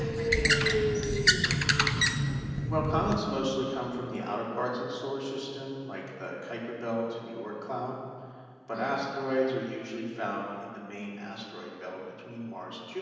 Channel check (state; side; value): identical; both; correlation 1.00